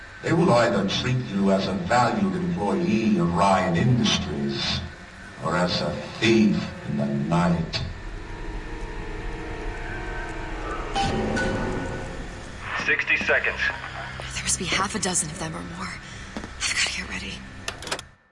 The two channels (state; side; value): identical; both; correlation 1.00